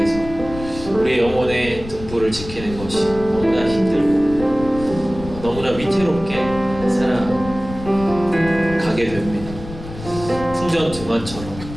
우리의 영혼의 등불을 지키는 것이 너무나 힘들고 너무나 위태롭게 살아가게 됩니다.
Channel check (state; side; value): noise; left; rumble, 12 dB below the sound